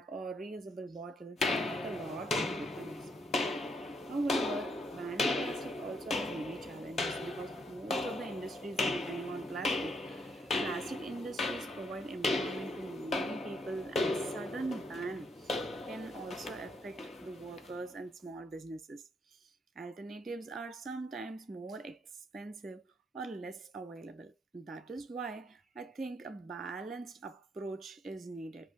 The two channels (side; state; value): both; normal; correlation 0.74